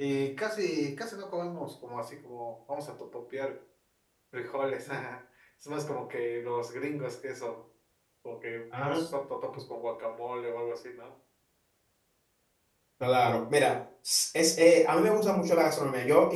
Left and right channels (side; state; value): both; identical; correlation 1.00